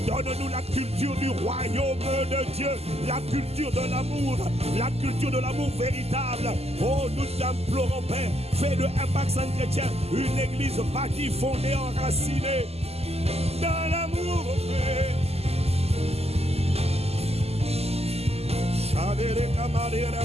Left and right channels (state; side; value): late; left; 0.29 ms